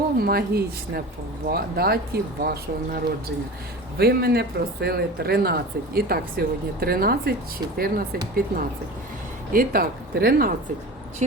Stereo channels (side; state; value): both; normal; correlation 0.34